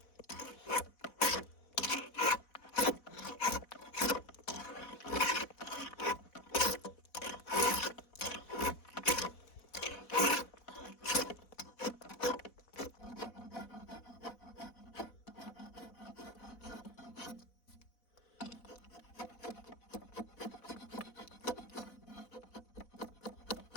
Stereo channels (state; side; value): late; right; 4.1 ms